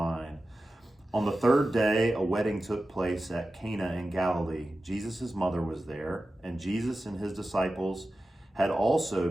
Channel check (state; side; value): normal; both; correlation 0.94